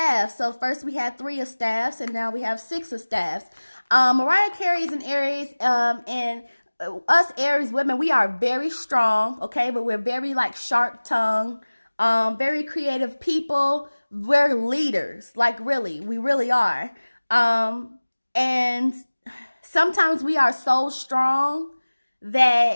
So first we had 3 of staffs, and now we have 6 of staffs. Mariah Carey is an Aries, and us Aries women, we are very strong, okay? But we're very like sharp-tongued, very creative people. We're leaders, like really, we really are. And sometimes we are so strong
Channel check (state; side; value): inverted; both; correlation -1.00